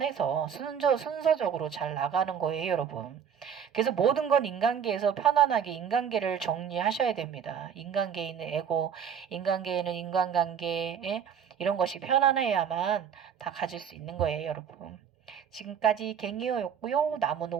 순서적으로 잘 나가는 거예요, 여러분. 그래서 모든 건 인간계에서 편안하게 인간계를 정리하셔야 됩니다. 인간계에 있는 에고, 인간계에는 인간관계, 이런 것이 편안해야만 다 가질 수 있는 거예요, 여러분. 지금까지 갱이어였고요. 남은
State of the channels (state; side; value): quieter; left; 7.8 dB